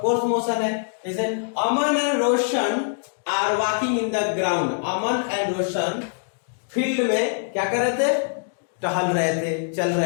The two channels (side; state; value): right; silent; digital silence